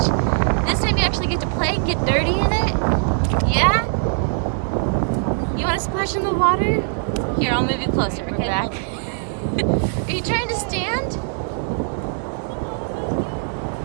This time you actually get to play and get dirty in it? Yeah? You want to splash in the water? Here, I'll move you closer, okay? We're back. Are you trying to stand?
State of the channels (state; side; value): silent; left; 58 dB below the other